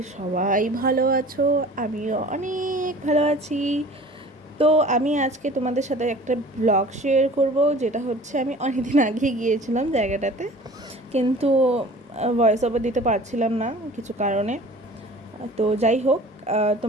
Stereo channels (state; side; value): normal; both; correlation 0.45